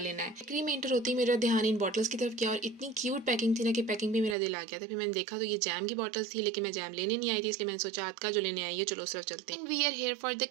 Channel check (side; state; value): left; drops out; at 4.4 s